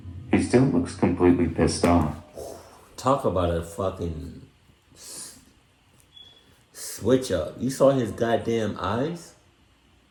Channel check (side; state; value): both; identical; correlation 1.00